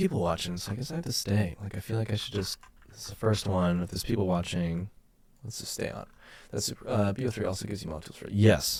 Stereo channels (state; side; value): identical; both; correlation 1.00